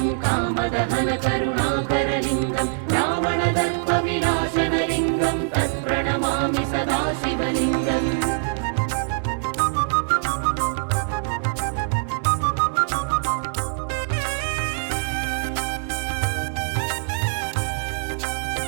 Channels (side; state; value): left; silent; digital silence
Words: कामदहनकरुणाकरलिङ्गं रावणदर्पविनाशनलिङ्गं तत्प्रणमामि सदा शिवलिङ्गम्.